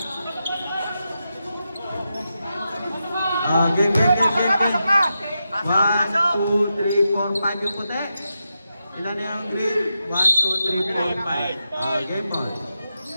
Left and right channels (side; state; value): both; inverted; correlation -0.88